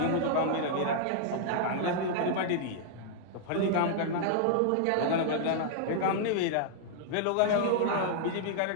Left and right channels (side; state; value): both; different; correlation -0.01